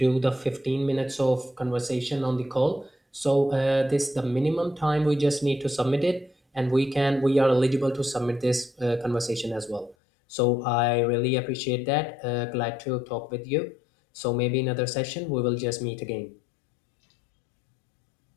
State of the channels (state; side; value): drops out; right; at 10.0 s